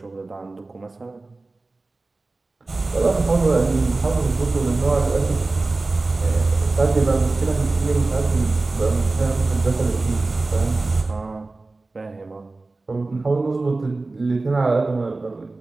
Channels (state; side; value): quieter; left; 3.4 dB